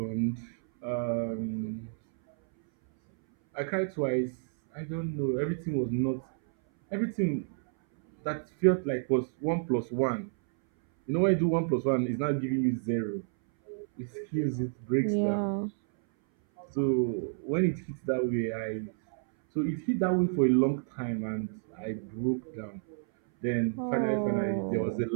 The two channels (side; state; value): left; silent; 58 dB below the other